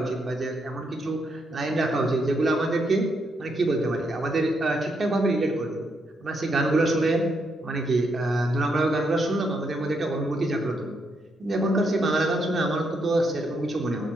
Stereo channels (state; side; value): normal; both; correlation 0.78